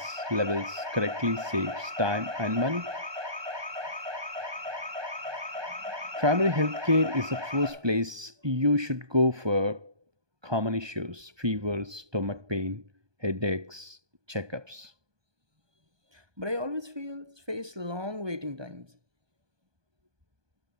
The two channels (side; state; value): left; late; 1.2 ms